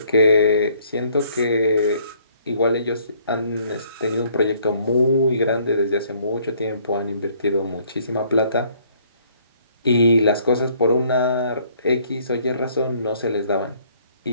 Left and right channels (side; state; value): both; inverted; correlation -0.62